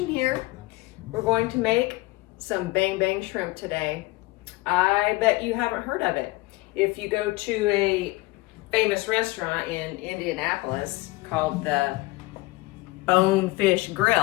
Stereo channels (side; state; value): right; quieter; 21.5 dB